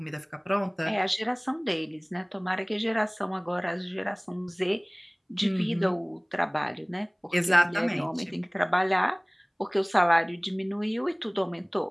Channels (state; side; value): identical; both; correlation 1.00